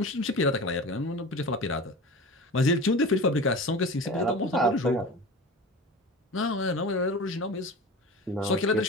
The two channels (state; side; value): normal; both; correlation 0.33